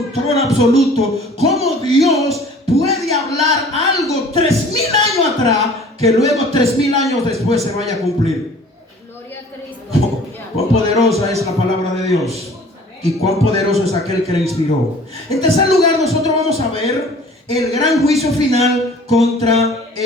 absoluto, cómo Dios puede hablar algo 3000 años atrás, que luego 3000 años después se vaya a cumplir. Gloria a Cristo. Cuán poderosa es la palabra de Dios, y cuán poderoso es aquel que la inspiró. En tercer lugar, nosotros vamos a ver el gran juicio final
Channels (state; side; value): normal; both; correlation 0.49